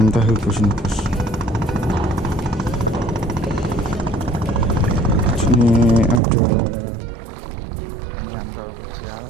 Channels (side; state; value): left; drops out; at 6.2 s